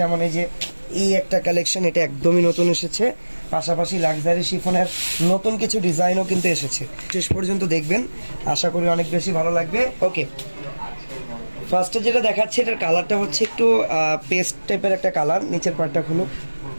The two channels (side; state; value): both; inverted; correlation -1.00